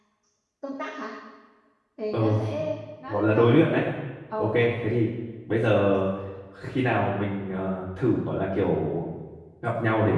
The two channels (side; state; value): both; identical; correlation 1.00